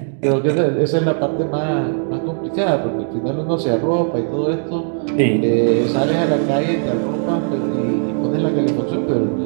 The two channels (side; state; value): left; silent; digital silence